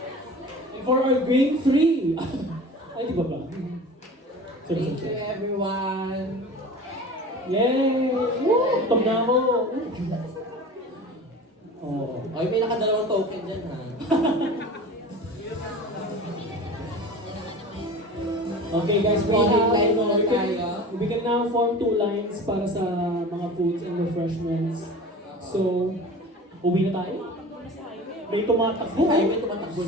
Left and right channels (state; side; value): normal; both; correlation 0.37